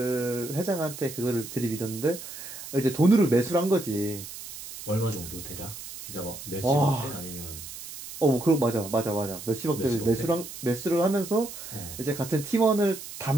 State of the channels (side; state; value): right; noise; hiss, 12 dB below the sound